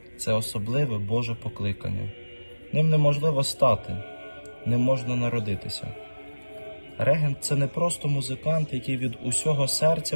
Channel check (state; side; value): inverted; both; correlation -1.00